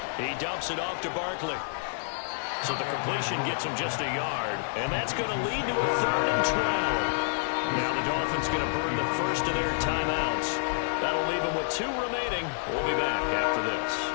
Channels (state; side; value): silent; right; digital silence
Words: He dumps it off to Barkley. So the completion gets him just a yard, and that's going to lead to a 3rd and 12. Now the Dolphins going to burn the first of their timeouts. That'll leave them with 2 remaining. We'll be back after this.